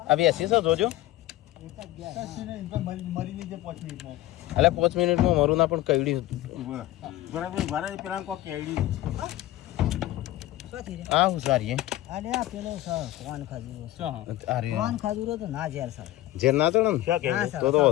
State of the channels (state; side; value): quieter; right; 15.5 dB